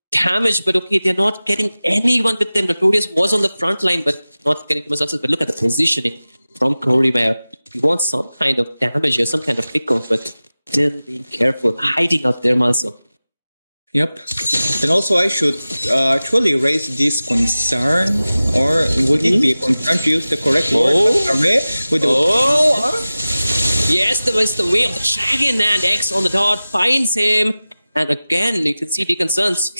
damage, but okay, they're not getting anyone with them. Notorious was on the front line, but not getting too much success. But look at the positioning from Corey where he wants some kind of damage here, some kind of pick-off, but still being careful, hiding out there, Malzo. Yep. And also, I should actually raise this concern, or would it be a concern to use the correct word? With Yes, there was the way of the dragon, and X on the dot finds him. And again, you can see Deacon Suns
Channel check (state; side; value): inverted; both; correlation -0.97